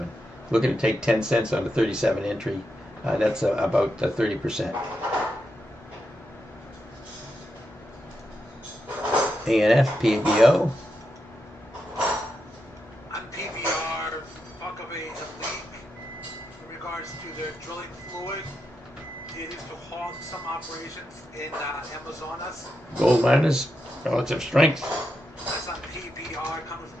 Looking to take 10 cents on the 37 entry. That's about 30%. ANF, PBO. On PBR, talk of a leak in regards to their drilling fluid. It is to halt some operations in Amazonas. Gold miners, relative strength. That's on PBR coming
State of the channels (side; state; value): both; normal; correlation 0.85